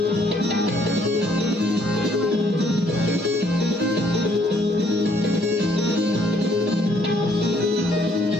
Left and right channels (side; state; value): both; normal; correlation 0.66